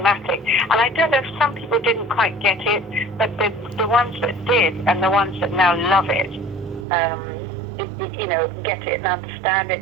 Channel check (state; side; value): drops out; left; at 6.9 s